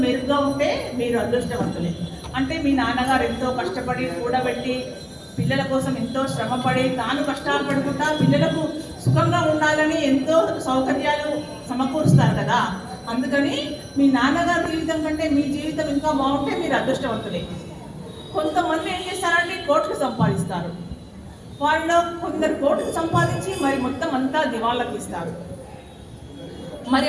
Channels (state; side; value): identical; both; correlation 1.00